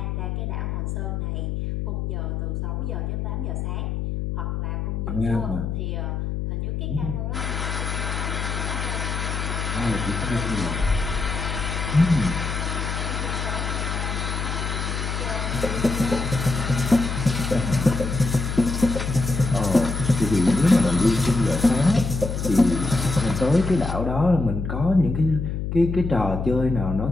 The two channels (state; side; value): noise; left; hum, 2 dB below the sound